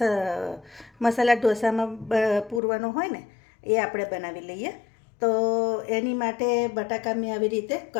મસાલા ઢોસામાં પૂરવાનો હોય ને એ આપણે બનાવી લઈએ. તો એની માટે બટાકા મેં આવી રીતે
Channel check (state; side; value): drops out; right; at 2.6 s